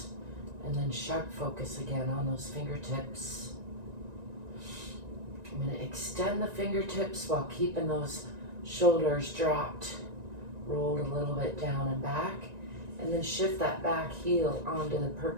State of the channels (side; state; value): left; late; 1.9 ms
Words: And then sharp focus again on those fingertips. I'm going to extend the fingertips while keeping those shoulders dropped, rolled a little bit down and back. And then shift that back heel onto the